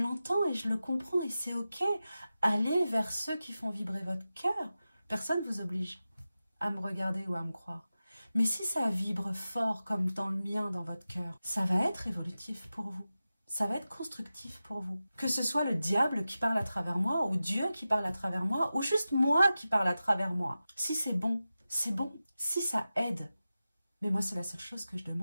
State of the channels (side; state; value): both; inverted; correlation -0.94